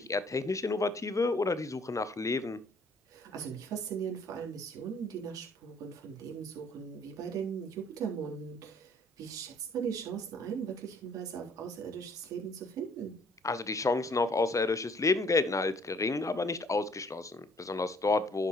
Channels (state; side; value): normal; both; correlation 0.59